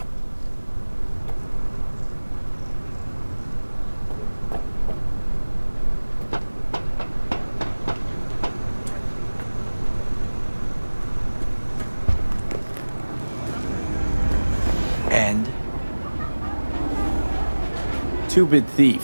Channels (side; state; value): both; inverted; correlation -1.00